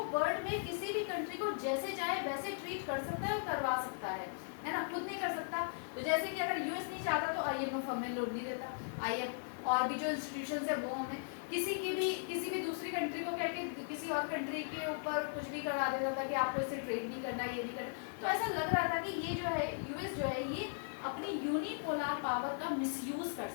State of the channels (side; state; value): right; silent; 52 dB below the other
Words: वर्ल्ड में किसी भी कंट्री को जैसे चाहे वैसे ट्रीट कर सकता है और करवा सकता है ना, खुद नहीं कर सकता। तो जैसे कि अगर US नहीं चाहता तो IMF हमें लोन नहीं देता, IMF और भी जो इंस्टीट्यूशन है वो हमें किसी भी दूसरी कंट्री को कहके किसी और कंट्री के ऊपर कुछ भी करवा देता था कि आपको इससे ट्रेड नहीं करना, ये नहीं करना। तो ऐसा लग रहा था कि ये जो है US जो है ये अपनी यूनिपोलर पावर का मिसयूज कर